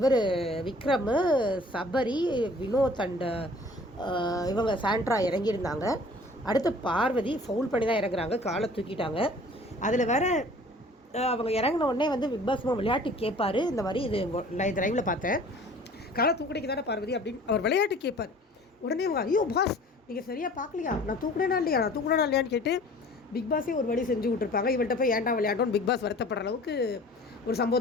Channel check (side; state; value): both; normal; correlation 0.49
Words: விக்ரம், சபரி, வினோத் அண்ட் இவங்க சாண்ட்ரா இறங்கியிருந்தாங்க. அடுத்து பார்வதி ஃபவுல் பண்ணி தான் இறங்குறாங்க, காலை தூக்கிட்டாங்க. அதில் வேற அவங்க இறங்கின உடனே வந்து பிக் பாஸ் விளையாட்டு கேட்பார். இந்த மாதிரி இது லைவில் பார்த்தேன், காலை தூக்கடைக்கு தானே பார்வதி அப்படின்னு அவர் விளையாட்டு கேட்பார். உடனே அவங்க ஐயோ பாஸ் நீங்கள் சரியாக பார்க்கலையா, நான் தூக்குனேனா இல்லையான்னு கேட்டு பிக் பாஸே ஒரு வழி செஞ்சு விட்ருப்பாங்க. இவன்கிட்ட போய் ஏன்டா விளையாண்டோன்னு பிக் பாஸ் வருத்தப்படுற அளவுக்கு ஒரு